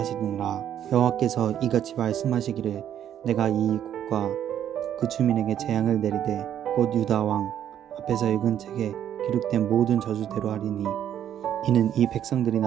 여호와께서 이같이 말씀하시기를 내가 이 국과 그 주민에게 재앙을 내리되 곧 유다 왕 앞에서 읽은 책에 기록된 모든 저주대로 하리니 이는 이 백성들이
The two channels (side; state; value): left; quieter; 10.2 dB